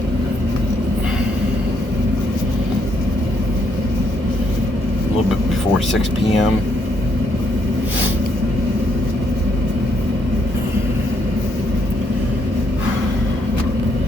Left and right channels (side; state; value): both; normal; correlation 0.74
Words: A little bit before 6 p.m.